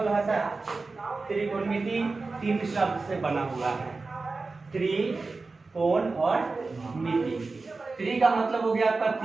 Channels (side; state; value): left; quieter; 3.8 dB